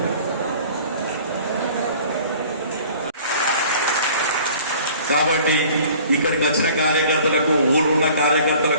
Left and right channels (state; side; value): inverted; both; correlation -0.49